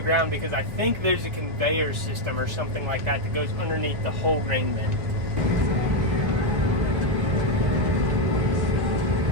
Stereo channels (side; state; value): left; late; 1.8 ms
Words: ground because I think there's a conveyor system or something like that that goes underneath the whole grain bin.